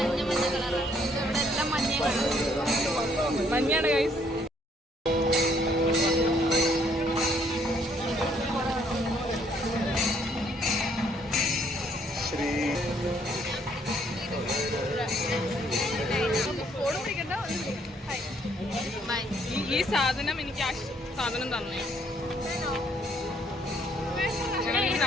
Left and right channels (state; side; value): normal; both; correlation 0.67